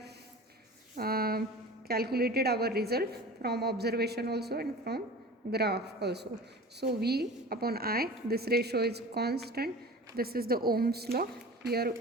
calculated our result from observation also and from graph also. So V upon I, this ratio is constant. This is the Ohm's law. Here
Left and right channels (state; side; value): normal; both; correlation 0.37